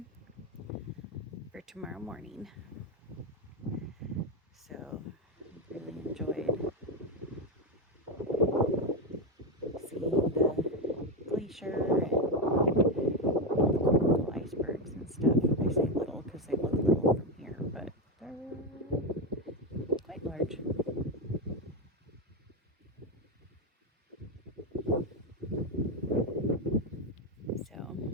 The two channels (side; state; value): both; normal; correlation 0.10